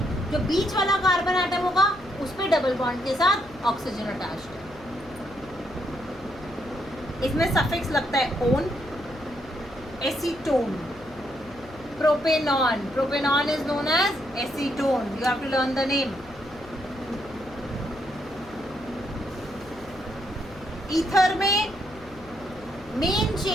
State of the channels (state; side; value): noise; left; hum, 22 dB below the sound